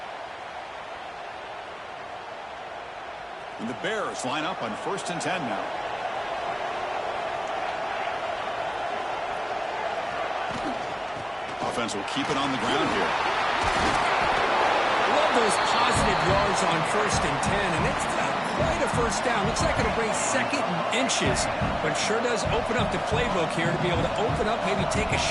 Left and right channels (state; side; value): identical; both; correlation 1.00